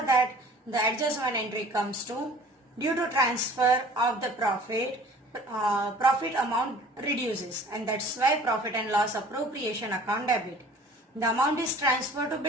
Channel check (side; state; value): both; normal; correlation 0.48